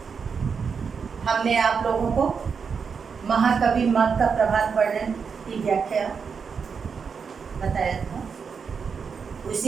हमने आप लोगों को महाकवि मग का प्रभात वर्णन की व्याख्या बताया था,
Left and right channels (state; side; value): quieter; left; 6.0 dB